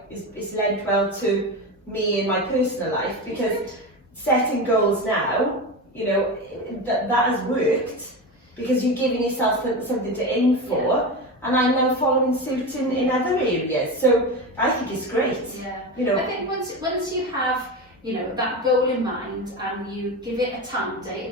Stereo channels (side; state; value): both; normal; correlation 0.22